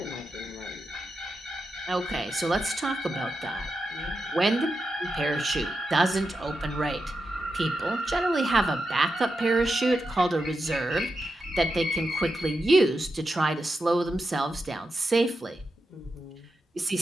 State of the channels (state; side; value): normal; both; correlation 0.88